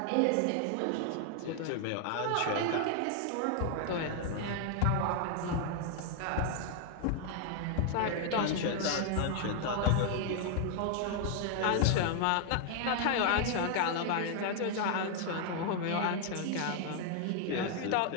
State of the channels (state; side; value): different; both; correlation 0.00